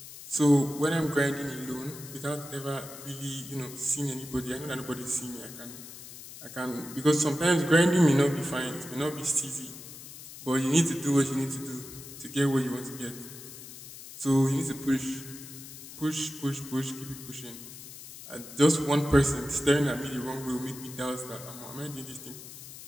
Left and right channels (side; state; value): left; noise; hiss, 14 dB below the sound